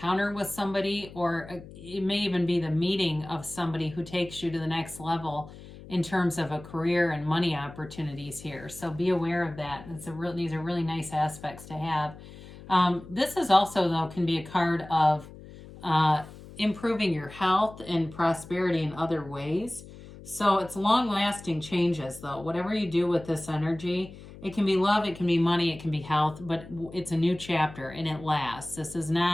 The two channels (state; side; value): noise; left; hum, 17 dB below the sound